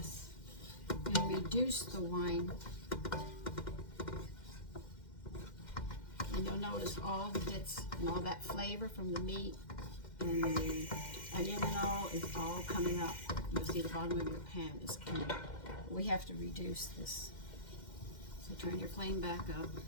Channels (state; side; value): late; right; 2.1 ms